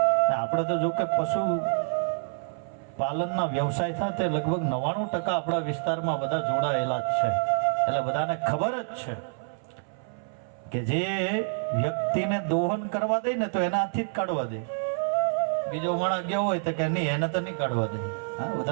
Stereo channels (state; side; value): silent; left; 60 dB below the other